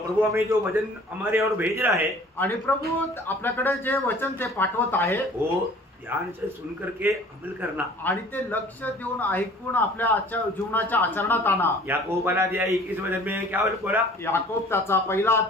प्रभु हमें जो वचन हमारे और भेज रहा है, आणि प्रभू आपल्याकडे जे वचन ते पाठवत आहे वो ध्यान से सुन करके अमल करना. आणि ते लक्ष देऊन ऐकून आपल्या आजच्या जीवनाच्या आचरणात आणा. याकूब पहिला अध्याय 21 वचन में क्या बोला. याकोब त्याचा पहिला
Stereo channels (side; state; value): both; normal; correlation 0.49